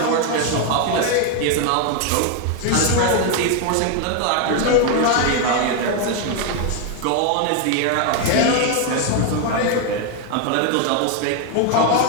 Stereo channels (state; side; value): different; both; correlation 0.01